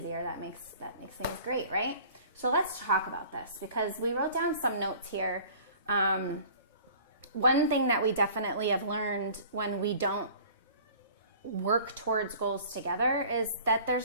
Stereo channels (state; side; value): inverted; both; correlation -0.48